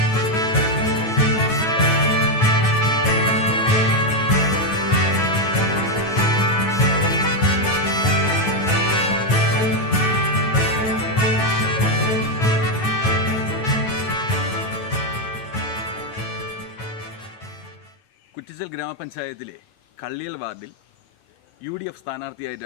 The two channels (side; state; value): right; late; 9.3 ms